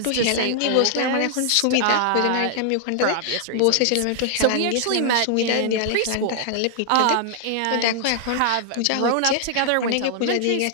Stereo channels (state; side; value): different; both; correlation 0.00